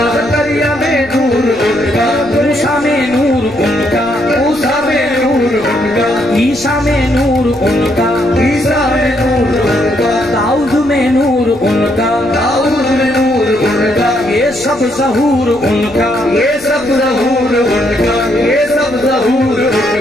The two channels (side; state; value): left; noise; rumble, 22 dB below the sound